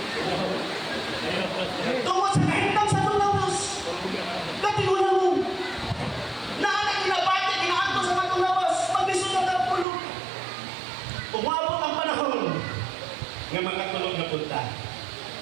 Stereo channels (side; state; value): left; drops out; at 9.9 s